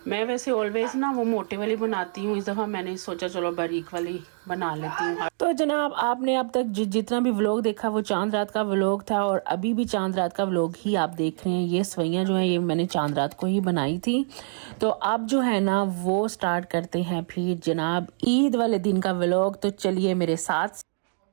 मैं वैसे ऑलवेज ना वो मोटे वाली बनाती हूँ, इस दफ़ा मैंने सोचा चलो बारीक वाली बना लेती हूँ। तो जनाब आपने अब तक जितना भी व्लॉग देखा वो चांद रात का व्लॉग था, और अभी भी चांद रात का व्लॉग ही आप देख रहे हैं। ये सेवइयां जो हैं ये मैंने चांद रात को ही बनाई थी। तो अब जो है ना वो स्टार्ट करते हैं फिर जनाब ईद वाले दिन का व्लॉग। तो चलिए मेरे साथ।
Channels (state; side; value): silent; left; digital silence